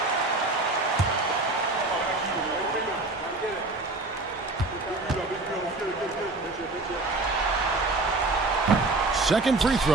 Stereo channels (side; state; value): left; quieter; 3.2 dB